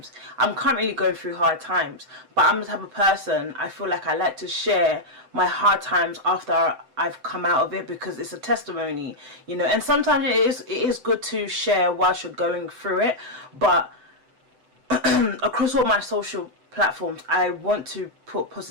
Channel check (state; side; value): late; left; 7.8 ms